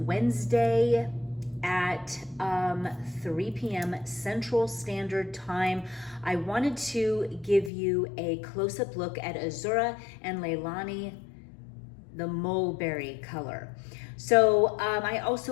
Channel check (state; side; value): drops out; right; at 7.7 s